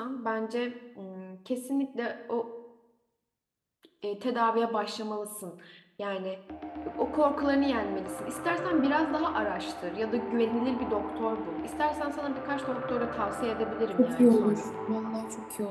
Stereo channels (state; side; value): identical; both; correlation 1.00